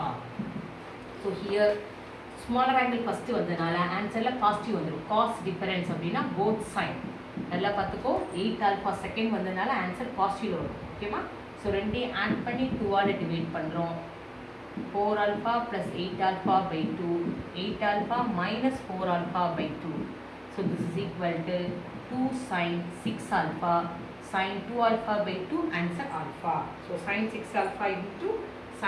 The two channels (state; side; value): identical; both; correlation 1.00